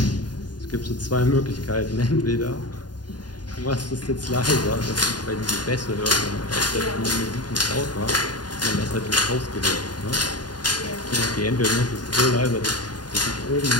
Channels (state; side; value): late; right; 0.70 ms